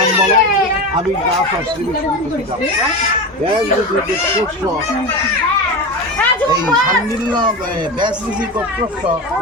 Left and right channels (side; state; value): both; normal; correlation 0.23